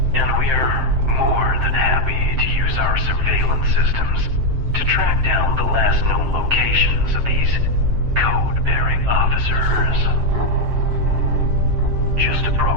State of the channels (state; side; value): late; left; 7.6 ms